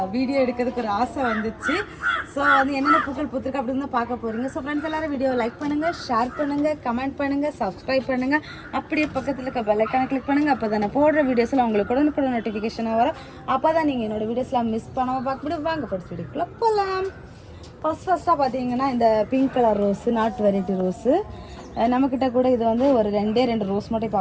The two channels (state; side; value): identical; both; correlation 1.00